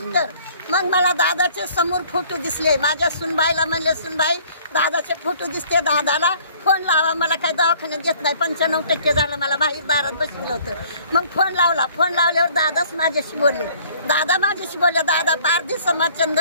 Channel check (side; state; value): both; inverted; correlation -0.56